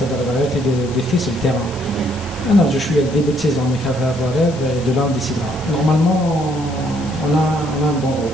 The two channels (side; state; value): left; noise; hiss, 18 dB below the sound